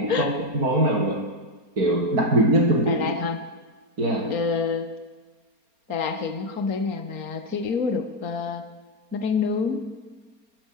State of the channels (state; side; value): late; left; 4.3 ms